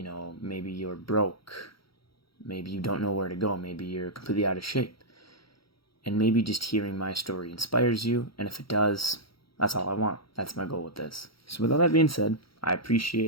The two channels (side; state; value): right; late; 0.75 ms